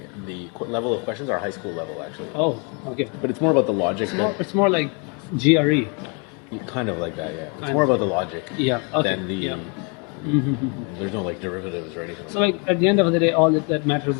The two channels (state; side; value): quieter; right; 35.0 dB